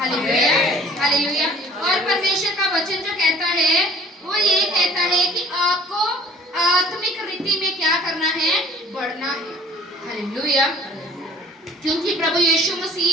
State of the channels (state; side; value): normal; both; correlation 0.51